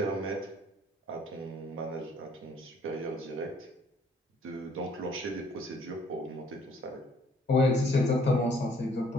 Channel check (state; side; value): normal; both; correlation 0.62